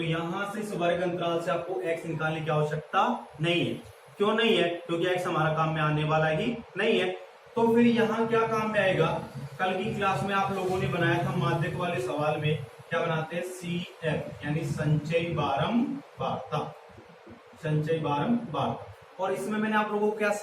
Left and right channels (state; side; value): identical; both; correlation 1.00